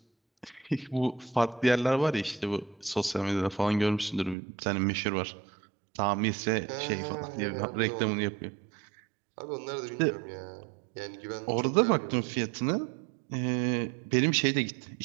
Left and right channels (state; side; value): drops out; left; at 4.4 s